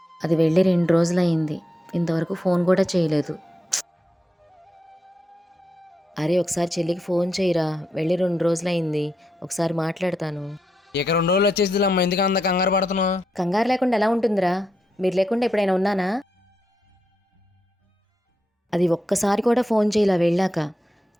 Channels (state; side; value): normal; both; correlation 0.84